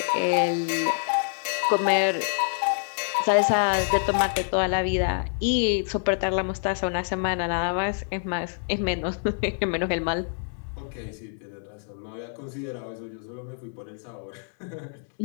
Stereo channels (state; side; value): silent; right; digital silence